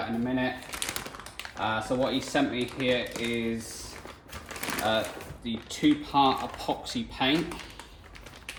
in a minute. So what he sent me here is the 2-part epoxy paint,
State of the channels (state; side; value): identical; both; correlation 1.00